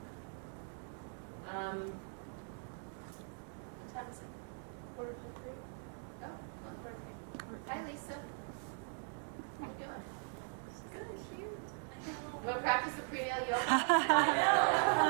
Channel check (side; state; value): left; silent; 51 dB below the other